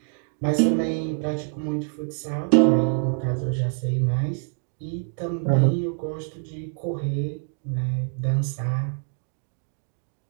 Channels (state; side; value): silent; left; 57 dB below the other